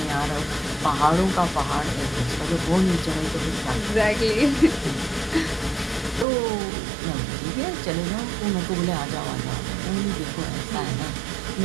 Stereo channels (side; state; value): left; drops out; at 6.2 s